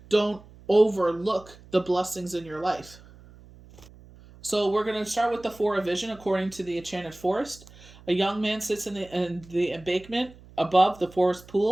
don't overlook the blessings in your life. So we're going to start with the Four of Vision according to the Enchanted Forest. A young man sits in the embankment above the forest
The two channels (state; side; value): noise; right; hum, 22 dB below the sound